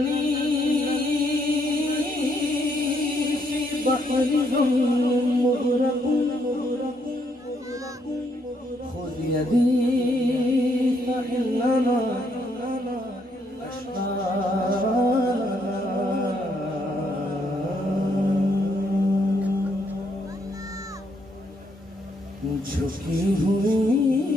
फी बहरिन मुग़रक़ुन खुद यदी फइन्नमा झुकी हुई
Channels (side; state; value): both; normal; correlation 0.73